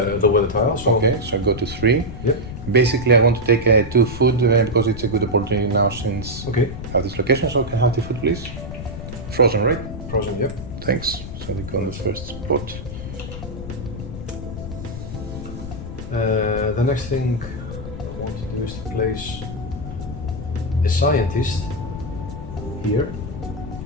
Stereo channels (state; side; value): noise; left; rumble, 9 dB below the sound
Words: the weather tile. So okay. So I go to 3. Yep. Basically, I want to take 2 food because it's a good opportunity now since Okay. I have this location. So can I have 2 food, please? Frozen, right? Frozen. Yep. Thanks. So they go on the first spot. The next thing I want to do is to place a scientist here.